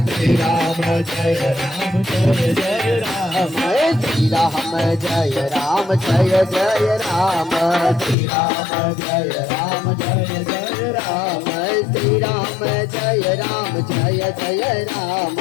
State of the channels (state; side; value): drops out; right; at 8.2 s